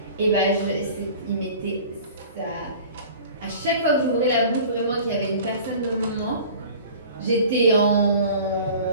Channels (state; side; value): inverted; both; correlation -0.43